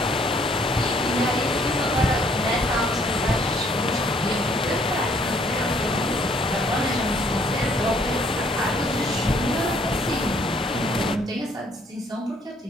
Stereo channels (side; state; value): both; normal; correlation 0.64